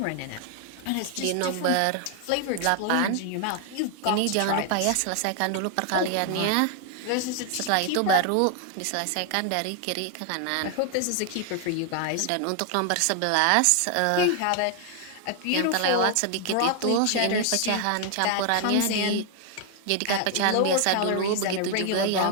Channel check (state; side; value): different; both; correlation 0.00